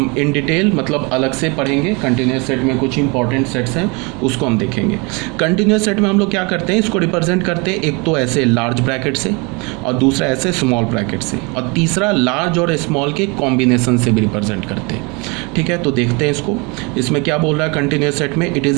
इन डिटेल मतलब अलग से पढ़ेंगे। कंटिन्यूस सेट में कुछ इंपॉर्टेंट सेट्स हैं उसको हम देखेंगे। कंटिन्यूस सेट में हम लोग क्या करते हैं, इसको रिप्रेजेंट करते हैं एक तो ऐसे लार्ज ब्रैकेट से और दूसरा ऐसे स्मॉल ब्रैकेट से और तीसरा लार्ज और स्मॉल के कॉम्बिनेशन से भी रिप्रेजेंट करते हैं। ठीक है, तो देखते हैं इसको। इसमें क्या बोल रहा है कंटिन्यूस सेट में, it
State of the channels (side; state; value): left; quieter; 29.5 dB